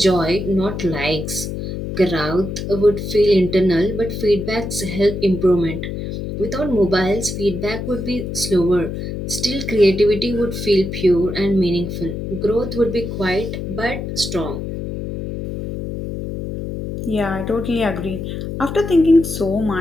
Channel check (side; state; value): left; noise; hum, 6 dB below the sound